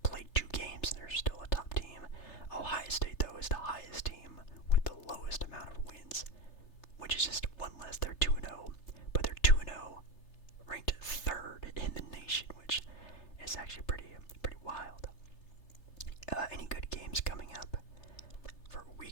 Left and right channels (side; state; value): right; late; 3.3 ms